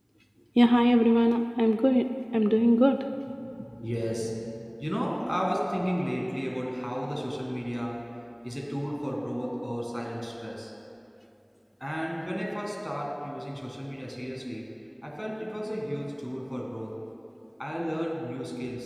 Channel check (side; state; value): both; identical; correlation 1.00